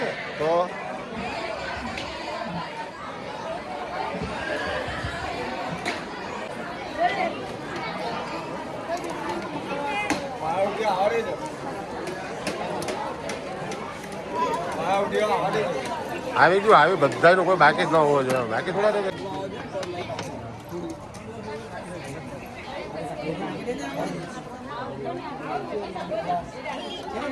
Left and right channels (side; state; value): both; identical; correlation 1.00